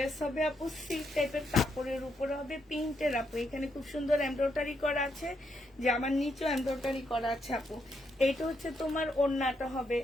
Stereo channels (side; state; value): both; normal; correlation 0.78